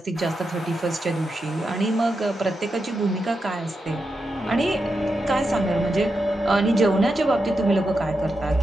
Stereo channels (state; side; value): normal; both; correlation 0.87